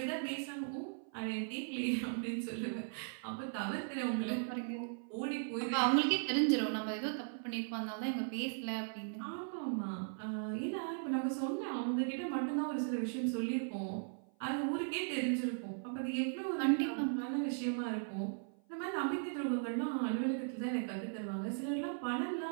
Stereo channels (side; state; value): left; silent; 52 dB below the other